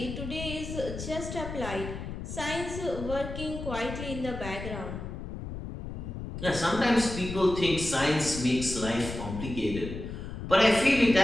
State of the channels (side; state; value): left; noise; rumble, 8 dB below the sound